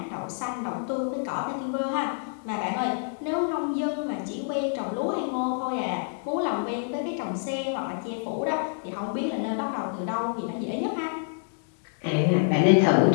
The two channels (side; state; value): right; silent; digital silence